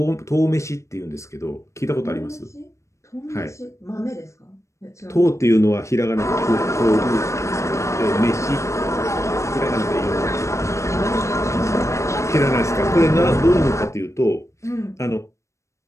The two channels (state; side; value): late; right; 0.14 ms